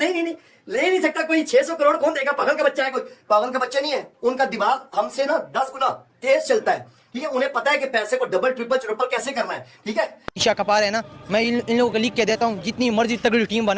ले नहीं सकता कोई। 600 करोड़ कौन देगा? पागल का बच्चा है कोई? पागल का बच्चा नहीं है। उनका दिमाग हमसे ना 10 गुना तेज चलता है। ठीक है, उन्हें पता है कि पैसे को डबल ट्रिपल चौपल कैसे करना है। ठीक है, ईशा कपार है ना, मैं इन लोगों को लिख के देता हूँ, जितनी मर्जी तगड़ी टीम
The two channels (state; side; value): identical; both; correlation 1.00